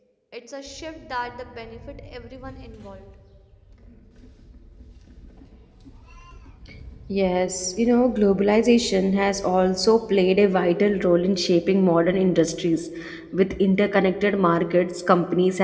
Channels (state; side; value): identical; both; correlation 1.00